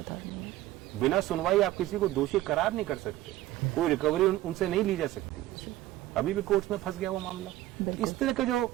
बिना सुनवाई आप किसी को दोषी करार नहीं कर सकते, कोई रिकवरी उनसे नहीं ली जा सकती है। अभी भी कोर्ट में फंस गया वो मामला। इस तरह के जो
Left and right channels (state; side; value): quieter; left; 15.5 dB